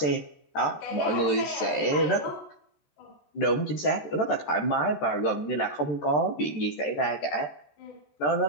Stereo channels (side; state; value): right; late; 13 ms